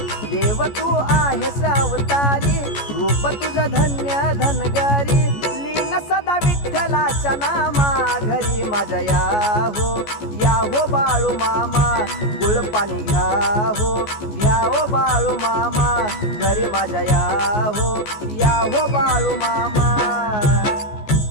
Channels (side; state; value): right; late; 14 ms